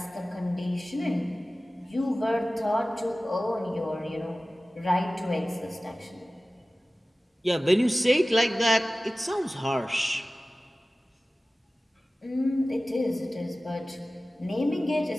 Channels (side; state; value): both; normal; correlation 0.97